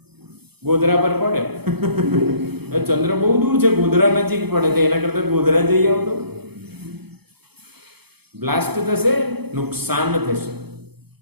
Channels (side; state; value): left; late; 0.97 ms